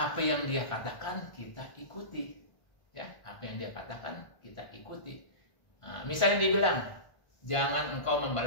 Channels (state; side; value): late; right; 1.4 ms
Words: yang Dia katakan kita ikuti. Ya, apa yang Dia katakan kita ikuti. Nah, misalnya dia bilang, jangan engkau